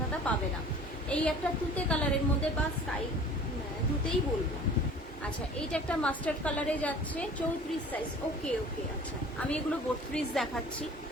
পাবে না। এই একটা তুতে কালারের মধ্যে, বা স্কাই তুতেই বলবো। আচ্ছা এইটা একটা মাস্টার্ড কালারে যাচ্ছে, 34 সাইজ। ওকে ওকে, আচ্ছা আমি এগুলো 32 দেখাচ্ছি।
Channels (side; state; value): both; normal; correlation 0.46